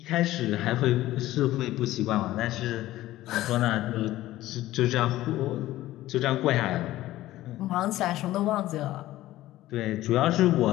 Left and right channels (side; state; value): right; quieter; 15.6 dB